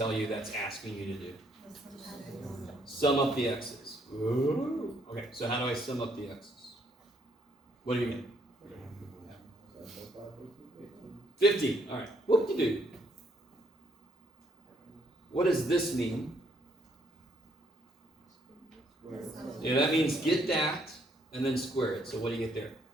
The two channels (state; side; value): normal; both; correlation 0.69